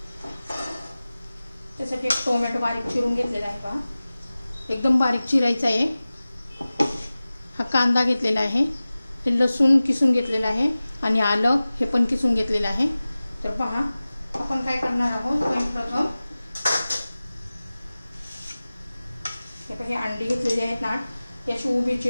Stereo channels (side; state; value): both; inverted; correlation -0.97